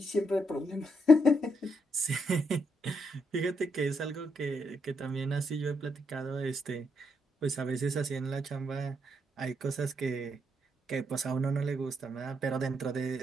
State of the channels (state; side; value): normal; both; correlation 0.78